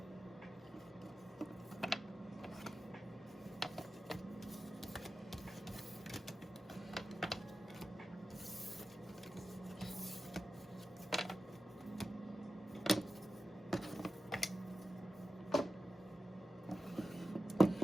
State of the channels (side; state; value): both; normal; correlation 0.93